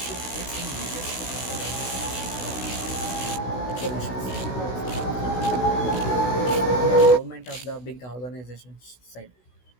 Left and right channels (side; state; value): right; late; 16 ms